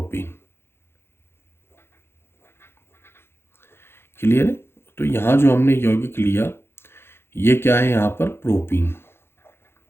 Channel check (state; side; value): late; right; 0.11 ms